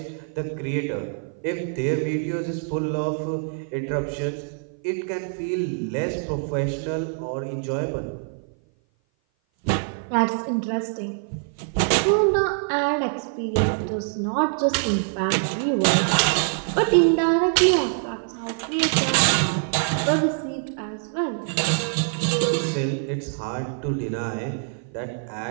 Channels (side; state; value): left; silent; 57 dB below the other